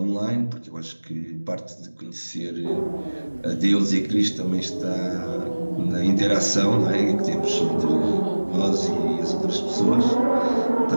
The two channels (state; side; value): inverted; both; correlation -1.00